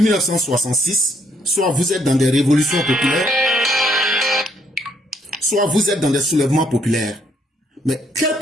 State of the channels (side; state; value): both; normal; correlation 0.70